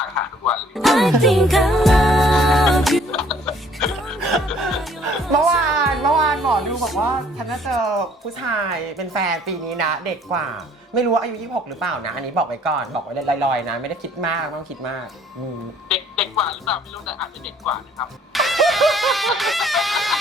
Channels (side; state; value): both; normal; correlation 0.59